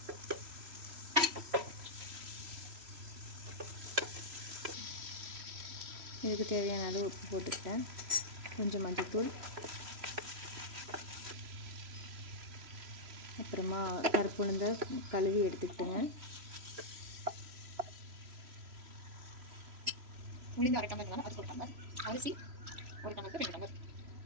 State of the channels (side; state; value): left; late; 3.0 ms